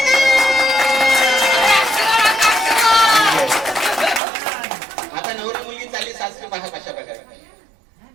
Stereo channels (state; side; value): drops out; left; at 4.2 s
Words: आता नवरी मुलगी चालली सासरी पहा कशा प्रकारे.